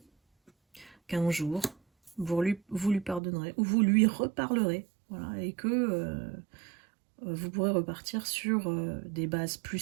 qu'un jour, vous lui pardonnerez, ou vous lui reparlerez, voilà, et que vous pourrez repartir sur des bases plus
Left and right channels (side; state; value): left; drops out; at 3.2 s